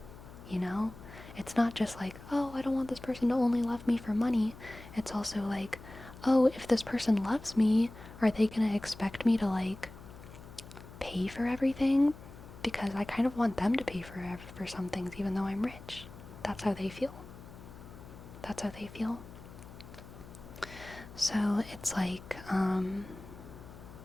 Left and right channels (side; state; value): left; noise; hum, 17 dB below the sound